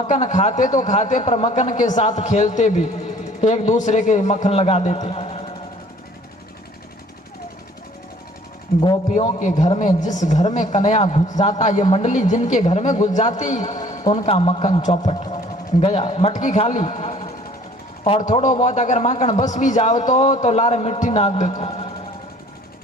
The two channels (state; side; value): normal; both; correlation 0.54